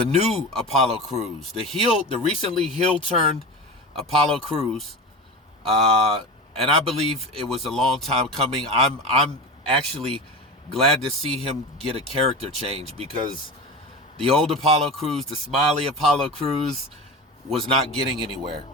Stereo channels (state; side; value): normal; both; correlation 0.27